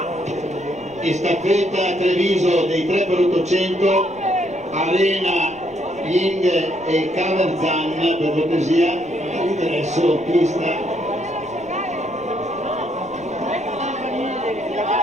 Staffetta Treviso dei 3x800, Arena, Ying e Caverzan, per cortesia, all'ingresso pista.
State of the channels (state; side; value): noise; left; rumble, 25 dB below the sound